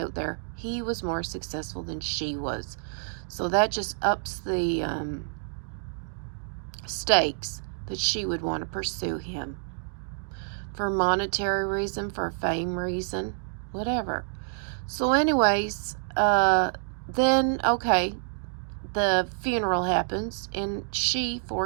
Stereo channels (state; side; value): silent; left; digital silence